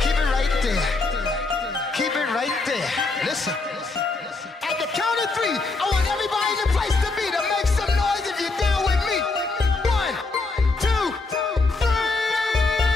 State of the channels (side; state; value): right; quieter; 3.6 dB